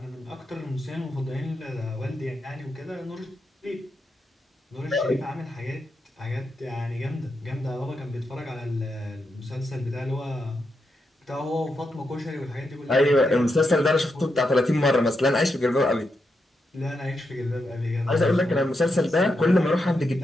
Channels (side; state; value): both; normal; correlation 0.84